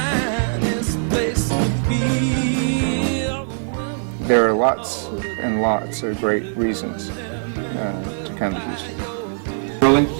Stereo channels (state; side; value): silent; left; 65 dB below the other